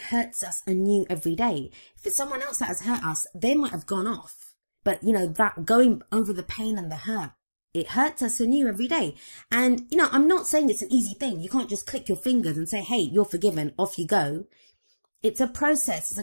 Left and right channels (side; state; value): both; inverted; correlation -1.00